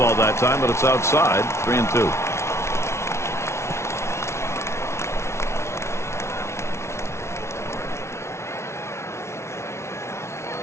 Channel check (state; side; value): late; right; 0.13 ms